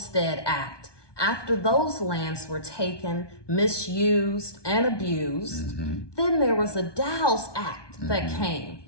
Act. After those lands were taken, misused, and abused, then there was a Dow's Act that came.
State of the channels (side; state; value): right; late; 1.2 ms